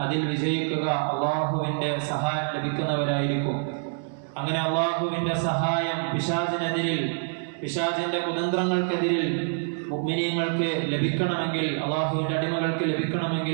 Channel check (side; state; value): left; silent; digital silence